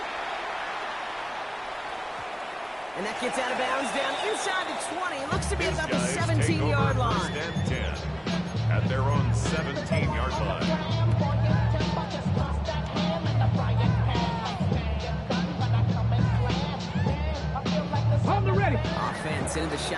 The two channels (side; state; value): both; identical; correlation 1.00